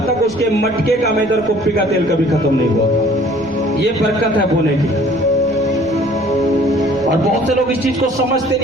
तक उसके मटके का मैदा और कुप्पी का तेल कभी खत्म नहीं हुआ। ये बरकत है बोने की। और बहुत से लोग इस चीज को समझते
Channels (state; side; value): noise; left; rumble, 23 dB below the sound